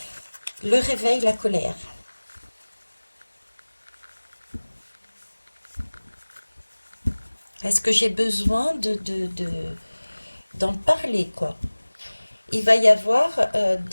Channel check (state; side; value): inverted; both; correlation -1.00